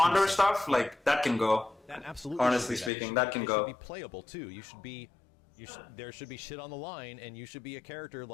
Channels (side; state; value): right; drops out; at 2.9 s